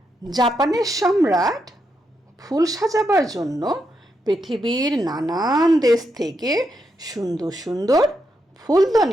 জাপানের সম্রাট ফুল সাজাবার জন্য পৃথিবীর নানান দেশ থেকে সুন্দর সুন্দর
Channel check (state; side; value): normal; both; correlation 0.82